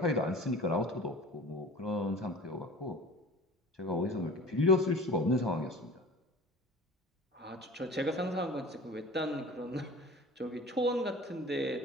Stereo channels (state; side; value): normal; both; correlation 0.40